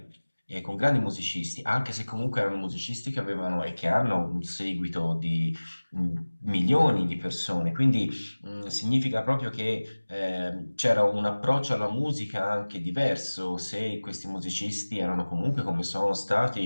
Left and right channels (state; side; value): inverted; both; correlation -1.00